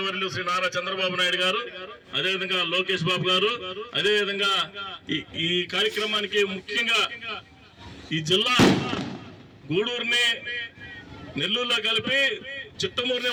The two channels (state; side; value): identical; both; correlation 1.00